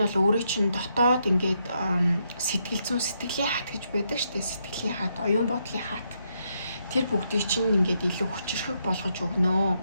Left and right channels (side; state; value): both; inverted; correlation -0.78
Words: бол өөрөө чинь дотоод ингээд сэтгэл зүйн сэтгэлийн хат гэж байдаг штэ. Сэтгэлийн хат, оюун бодлын хат. Тэр бүгдийг чинь ингээд илүү хүчрхэг болгож өгнө.